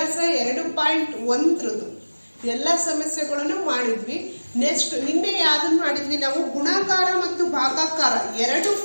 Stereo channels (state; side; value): inverted; both; correlation -1.00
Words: 2.1 ಎಲ್ಲ ಸಮಸ್ಯೆಗಳನ್ನು ಮಾಡಿದ್ವಿ. ನೆಕ್ಸ್ಟ್ ನಿನ್ನೆ ಯಾವ್ದನ್ನು ಮಾಡಿದ್ವಿ, ನಾವು ಗುಣಾಕಾರ ಮತ್ತು ಭಾಗಾಕಾರ ಎರಡು